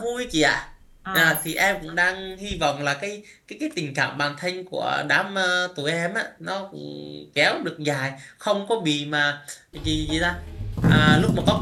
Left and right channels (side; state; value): both; identical; correlation 1.00